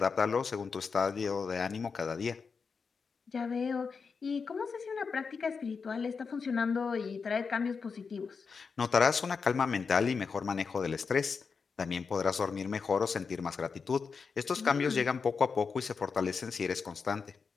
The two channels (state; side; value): quieter; right; 5.3 dB